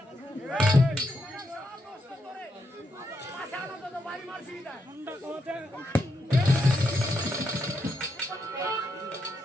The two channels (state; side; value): normal; both; correlation 0.81